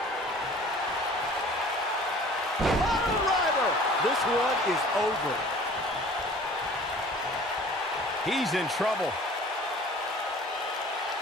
Driver! This one is over. He's in trouble.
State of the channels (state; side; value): normal; both; correlation 0.48